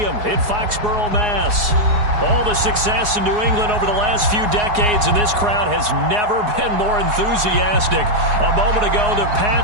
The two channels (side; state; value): left; late; 4.8 ms